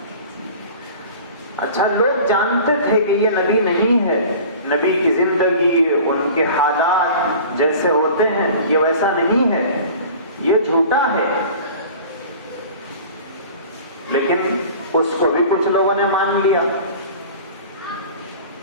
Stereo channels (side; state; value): both; inverted; correlation -0.41